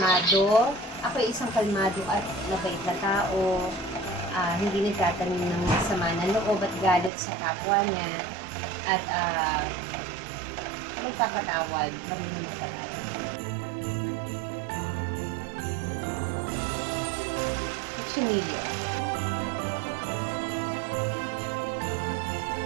Ako ay isang kalmado at mabait na tao. Hindi nagtatanim ng sama na loob at galit sa kapwa niya. At magpapatawad. Marunong magpatawad. Chinillo.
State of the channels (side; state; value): left; drops out; at 7.1 s